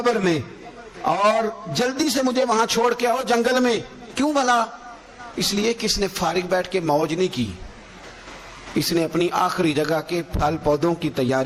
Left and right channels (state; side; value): identical; both; correlation 1.00